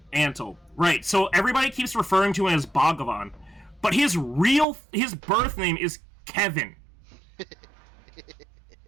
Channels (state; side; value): drops out; left; at 4.7 s